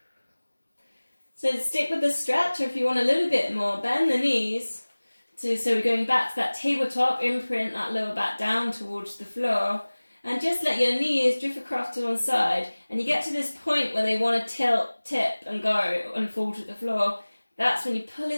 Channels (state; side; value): inverted; both; correlation -1.00